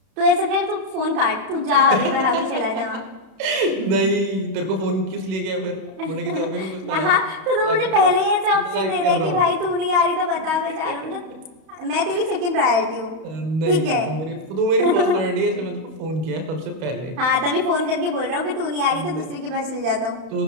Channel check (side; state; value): left; late; 31 ms